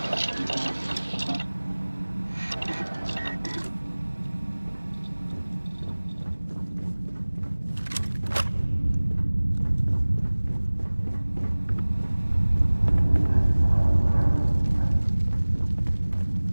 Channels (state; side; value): inverted; both; correlation -1.00